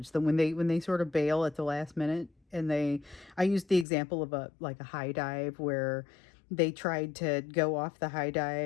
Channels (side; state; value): right; drops out; at 3.9 s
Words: When they sort of bail at the last minute, and I used the example of a high dive where they tried to go off the high